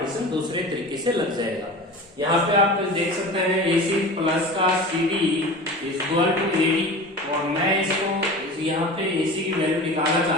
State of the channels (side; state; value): both; normal; correlation 0.34